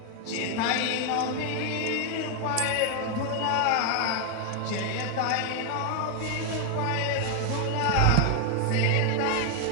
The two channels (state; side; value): different; both; correlation 0.01